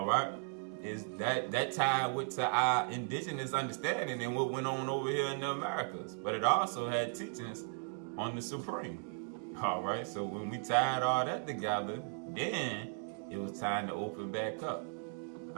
right? Is that tied with to our indigenous understanding and what went on over here in the Americas. But it also had teachings on the Supreme. All right? So when we tied all that together, then it was time to open back up.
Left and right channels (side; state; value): left; silent; 53 dB below the other